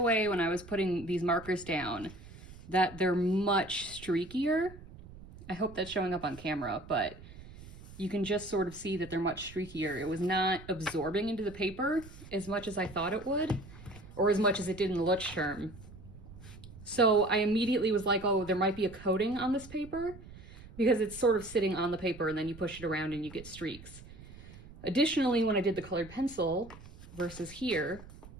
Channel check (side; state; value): right; noise; rumble, 17 dB below the sound